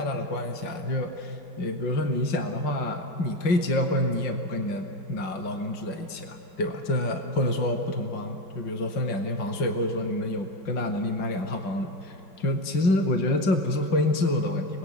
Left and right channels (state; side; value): late; right; 5.5 ms